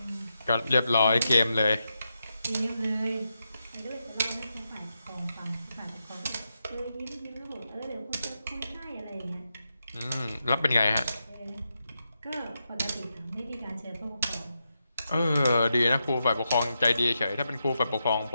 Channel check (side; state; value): both; inverted; correlation -0.86